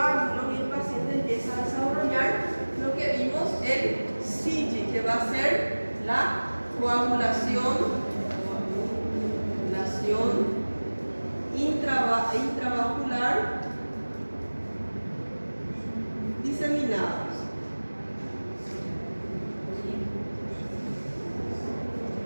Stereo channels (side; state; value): both; inverted; correlation -1.00